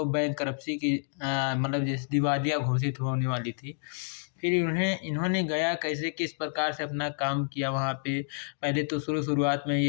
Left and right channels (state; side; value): silent; right; digital silence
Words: बैंकरप्सी की मतलब जैसे दिवालिया घोषित होने वाली थी। फिर इन्होंने गया कैसे किस प्रकार से अपना काम किया वहाँ पे। पहले तो शुरुआत में